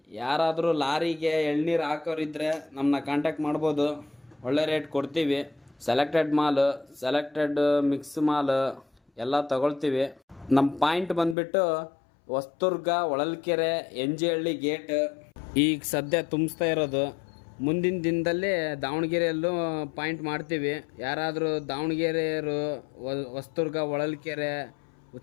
ಯಾರಾದರೂ ಲಾರಿಗೆ ಎಳ್ನೀರು ಹಾಕೋರಿದ್ರೆ ನಮ್ಮನ್ನ ಕಾಂಟ್ಯಾಕ್ಟ್ ಮಾಡ್ಬೋದು. ಒಳ್ಳೆ ರೇಟ್ ಕೊಡ್ತೀವಿ. ಸೆಲೆಕ್ಟೆಡ್ ಮಾಲು, ಸೆಲೆಕ್ಟೆಡ್ ಮಿಕ್ಸ್ ಮಾಲು ಎಲ್ಲ ತಗೊಳ್ತೀವಿ. ನಮ್ಮ ಪಾಯಿಂಟ್ ಬಂದುಬಿಟ್ಟು ಹೊಸದುರ್ಗ, ಹೊಳಲ್ಕೆರೆ, NG ಹಳ್ಳಿ ಗೇಟ್. ಈಗ ಸದ್ಯ ತುಂಬಿಸ್ತಾ ಇರೋದು. ಮುಂದಿನ ದಿನದಲ್ಲಿ ದಾವಣಗೆರೆಯಲ್ಲೂ ಪಾಯಿಂಟ್ ಮಾಡ್ತೀವಿ. ಯಾರಾದರೂ ದಾವಣಗೆರೆಯವರು ಹೊಸದುರ್ಗ, ಹೊಳಲ್ಕೆರೆ,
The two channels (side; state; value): right; drops out; at 11.4 s